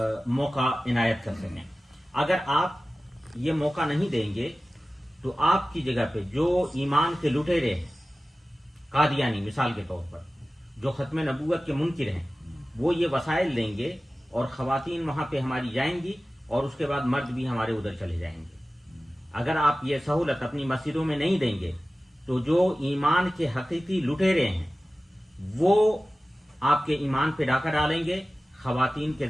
موقع عنایت کر سکیں. اگر آپ یہ موقع نہیں دیں گے تو آپ کی جگہ پہ جو ایمان کے لٹیرے ہیں، قادیانی مثال کے طور پر، جو ختم نبوت کے منکر ہیں، وہ یہ وسائل لیں گے اور خواتین وہاں پہ ہماری جائیں گی اور اس کے بعد مرد بھی ہمارے ادھر چلے جائیں گے. اگر آپ یہ سہولت اپنی مسجدوں میں نہیں دیں گے تو جو ایمان کے حقیقی لٹیرے ہیں وہ آپ کے ایمان پہ ڈاکہ ڈالیں گے خواتین کے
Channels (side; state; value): both; normal; correlation 0.96